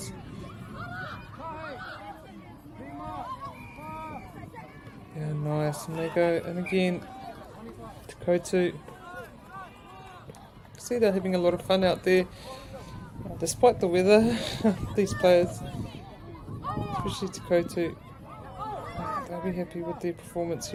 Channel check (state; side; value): identical; both; correlation 1.00